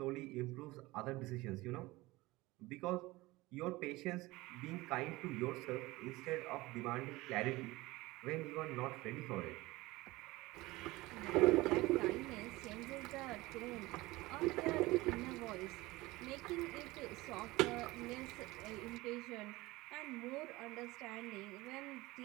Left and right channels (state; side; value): quieter; left; 20.4 dB